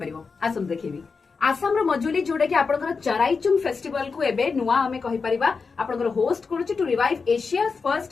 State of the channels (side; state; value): right; quieter; 4.9 dB